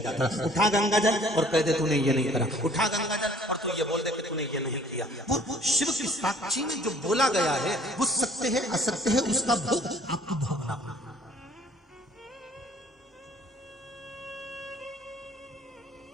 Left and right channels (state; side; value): normal; both; correlation 0.56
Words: जाता था। उठा गंगा जल और कह दे तूने ये नहीं करा, उठा गंगा जल और तू ये बोल दे कि तूने ये नहीं किया। वो शिव की साक्षी में जो बोला गया है वो सत्य है असत्य है, उसका भोग आपको भोगना।